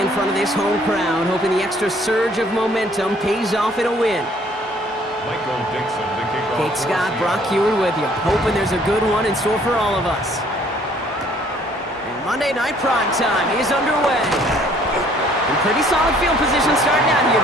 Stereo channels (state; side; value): normal; both; correlation 0.60